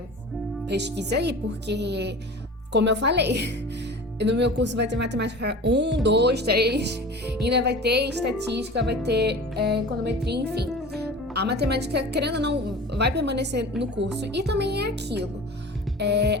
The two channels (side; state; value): both; normal; correlation 0.37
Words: pesquisa aí, porque, como eu falei, no meu curso vai ter matemática 1, 2, 3, ainda vai ter estatística, vai ter econometria, enfim. A matemática, querendo ou não, vai permanecer no curso. E também é aquilo.